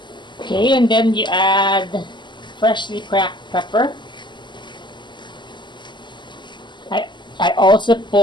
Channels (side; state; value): right; late; 0.22 ms